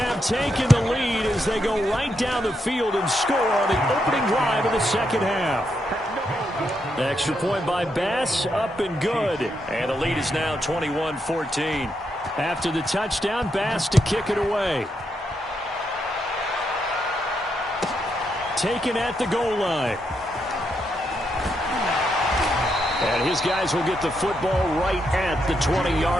taken the lead as they go right down the field and score on the opening drive of the second half. Extra point by Bass, up and good. And the lead is now 21-14. After the touchdown, Bass to kick it away. Taken at the goal line. And his guys will get the football right at the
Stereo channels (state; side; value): normal; both; correlation 0.81